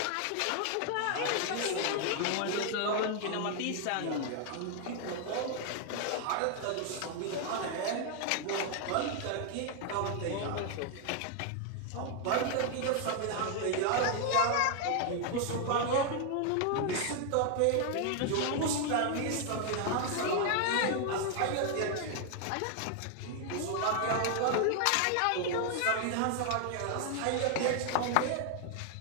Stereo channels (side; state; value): both; different; correlation 0.00